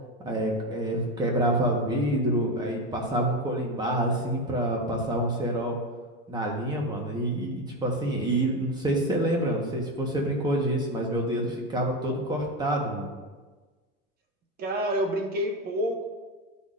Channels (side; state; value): both; normal; correlation 0.16